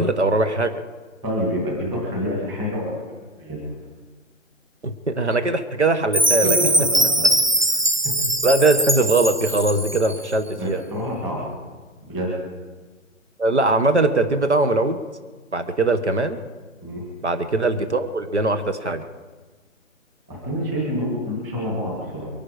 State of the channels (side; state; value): both; normal; correlation 0.28